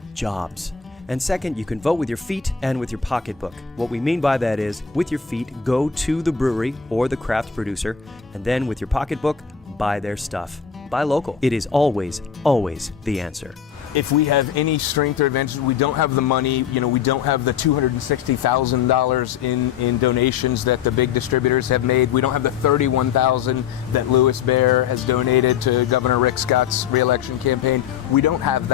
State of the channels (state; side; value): quieter; right; 7.4 dB